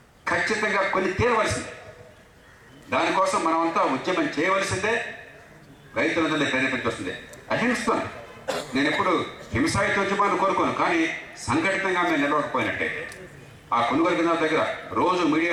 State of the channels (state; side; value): identical; both; correlation 1.00